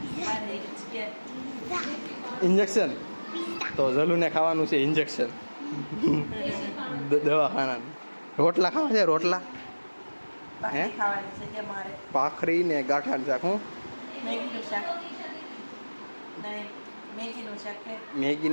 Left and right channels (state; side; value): inverted; both; correlation -1.00